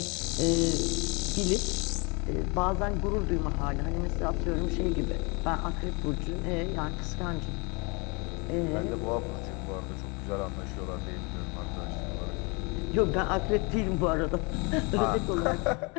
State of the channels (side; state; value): right; quieter; 30.0 dB